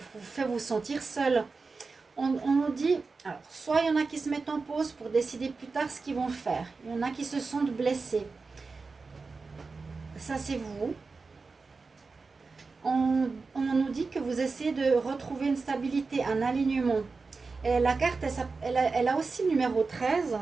vous fait vous sentir seul. On nous dit, alors, soit il y en a qui se mettent en pause pour décider plus tard ce qu'ils vont faire. Il y en a qui se sentent blessés. Ça, c'est vous. On nous dit que vous essayez de retrouver une stabilité, un alignement. Et la carte, elle a aussi le numéro 13,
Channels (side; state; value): left; quieter; 4.3 dB